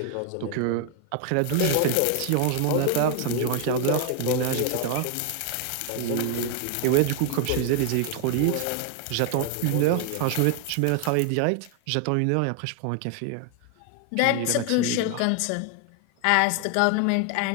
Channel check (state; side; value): different; both; correlation 0.00